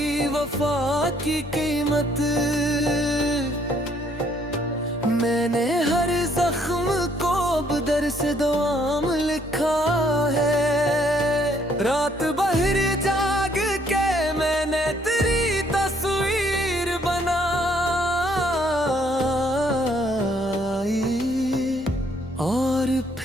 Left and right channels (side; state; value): both; normal; correlation 0.66